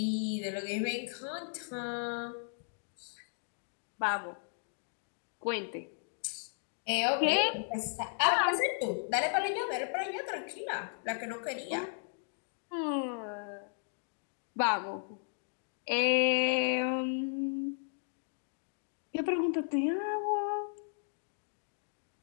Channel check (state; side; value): silent; right; digital silence